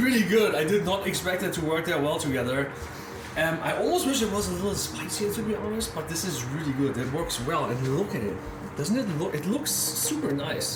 good. I did not expect it to work that well together. I almost wish it was a little spicier, to be honest, but this is really good. It works well, and look at it. Doesn't it look? It looks super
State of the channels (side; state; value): both; identical; correlation 1.00